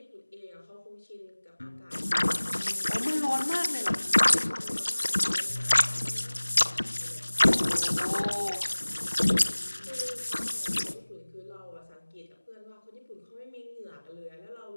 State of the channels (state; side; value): inverted; both; correlation -1.00